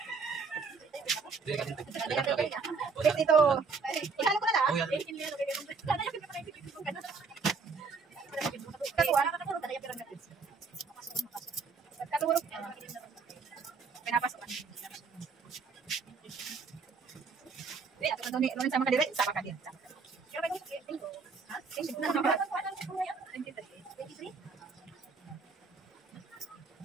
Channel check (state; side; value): quieter; left; 4.8 dB